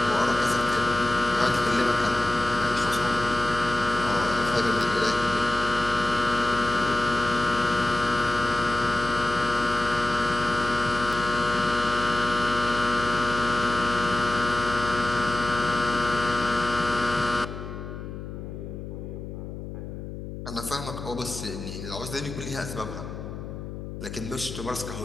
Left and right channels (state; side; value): noise; left; hum, 9 dB below the sound